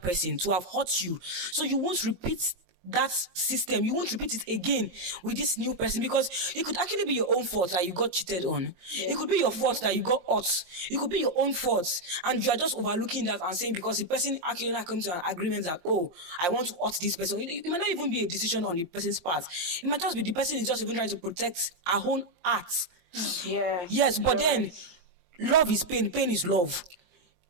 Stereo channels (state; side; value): late; left; 23 ms